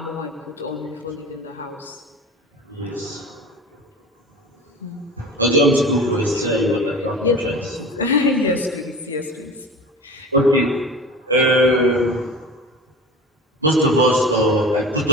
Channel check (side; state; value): both; normal; correlation 0.36